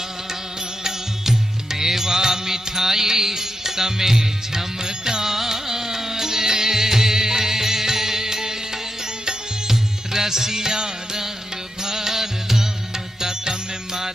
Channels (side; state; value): both; normal; correlation 0.86